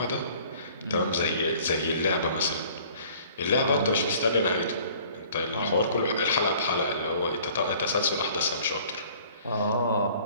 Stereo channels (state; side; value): inverted; both; correlation -0.53